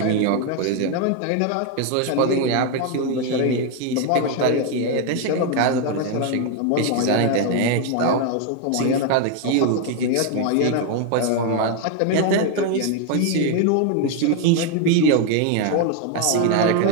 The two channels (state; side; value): different; both; correlation 0.01